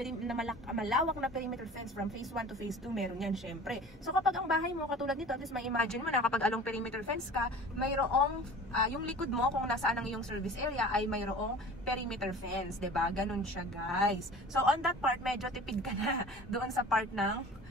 malawak na perimeter fence from phase 1 to phase 2, meron yan, syempre. So, kapag ang bahay mo, katulad nito, at least may imagine mo na kapag along perimeter fence ka, mayroong, yung likod mo, kung nasaan ang iyong service area, ay mayroong perimeter fence, 'di ba? Ganun siya, guys. So on that part, medyo tipid ka na doon sa part ng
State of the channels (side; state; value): both; normal; correlation 0.42